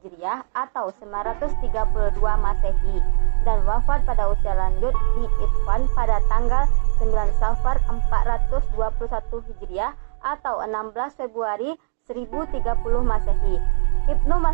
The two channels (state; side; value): silent; left; digital silence